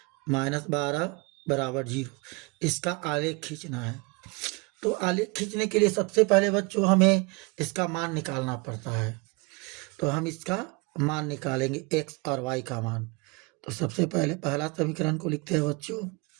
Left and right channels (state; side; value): quieter; left; 27.5 dB